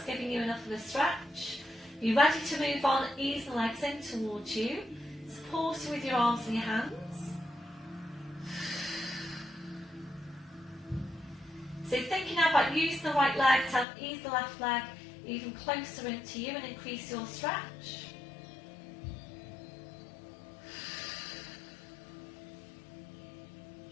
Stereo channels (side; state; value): right; drops out; at 13.9 s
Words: giving you enough of a stretch. You're ready to move on, ease the legs in towards you. Supporting with your arms and your hands. So thinking now about using the right leg to help ease the left leg even closer into you and increase your stretch.